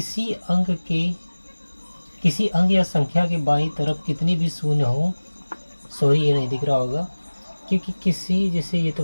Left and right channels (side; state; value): both; inverted; correlation -1.00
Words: किसी अंक या संख्या के बाईं तरफ कितनी भी शून्य हो, सॉरी ये नहीं दिख रहा होगा, क्योंकि जैसे ये